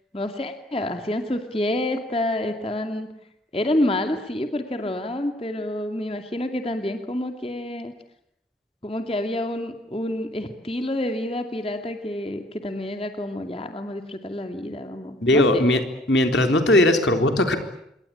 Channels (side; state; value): both; normal; correlation 0.58